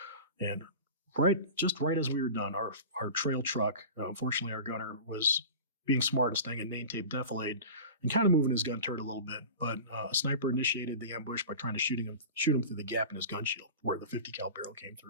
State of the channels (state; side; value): inverted; both; correlation -0.34